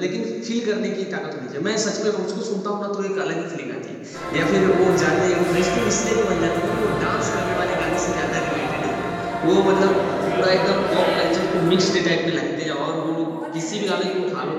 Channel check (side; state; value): both; identical; correlation 1.00